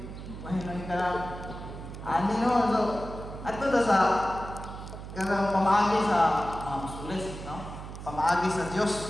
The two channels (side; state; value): right; noise; hum, 11 dB below the sound